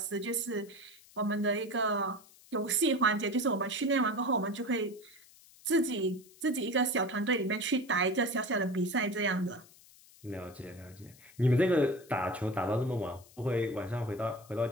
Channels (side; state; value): left; noise; hiss, 24 dB below the sound